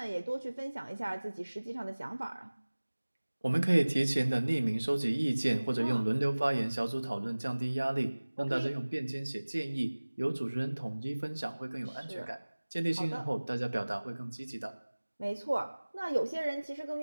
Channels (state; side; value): inverted; both; correlation -1.00